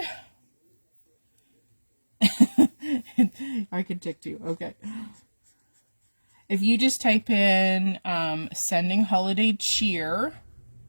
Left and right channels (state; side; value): inverted; both; correlation -1.00